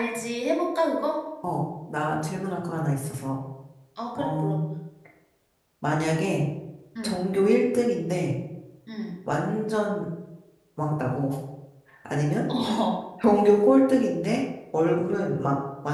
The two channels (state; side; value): identical; both; correlation 1.00